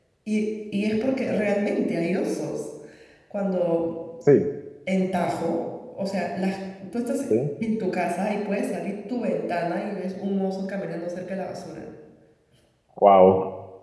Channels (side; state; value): both; identical; correlation 1.00